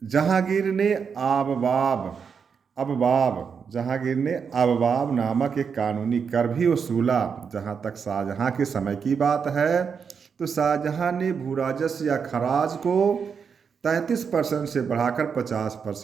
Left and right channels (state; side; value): quieter; left; 6.3 dB